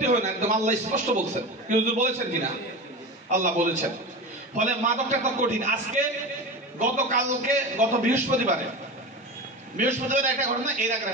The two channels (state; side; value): normal; both; correlation 0.27